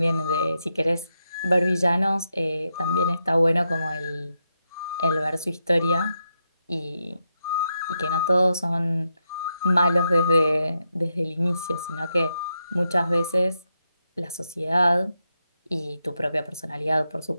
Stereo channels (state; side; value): inverted; both; correlation -0.85